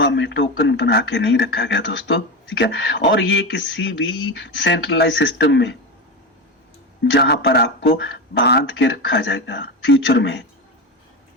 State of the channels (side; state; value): both; normal; correlation 0.19